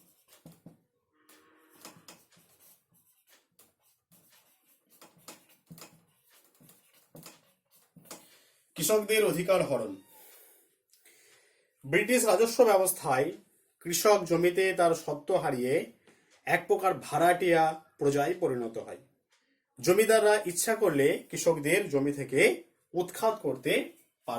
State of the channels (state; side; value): identical; both; correlation 1.00